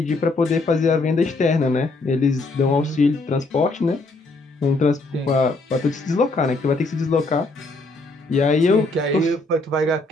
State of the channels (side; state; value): right; quieter; 3.1 dB